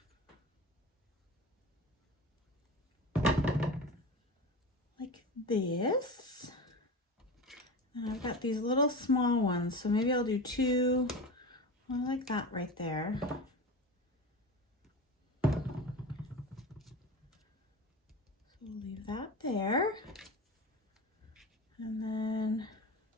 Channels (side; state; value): both; normal; correlation 0.28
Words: Like this. And I've got these little small ones, so maybe I'll do two, one like that right there. So we'll leave that there. And then